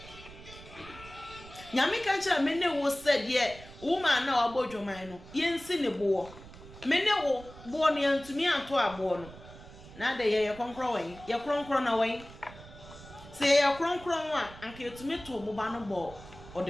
nyame ka nche me ne wo said ye woman na obodwoman no yensi ne bo me ne wo bo no yantumi anto abo no na de ye konkro wen ye kronkro na wen say ya kronkron a anka etumi to moba no bo o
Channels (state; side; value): noise; right; rumble, 18 dB below the sound